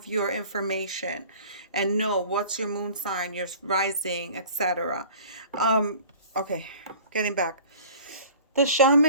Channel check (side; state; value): both; inverted; correlation -0.45